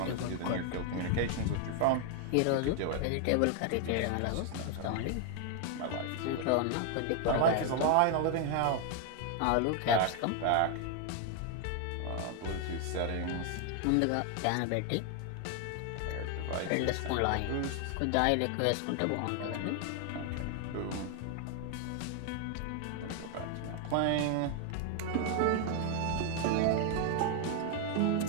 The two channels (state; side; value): different; both; correlation 0.00